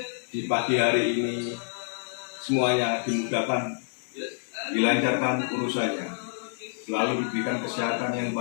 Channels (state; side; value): silent; right; 60 dB below the other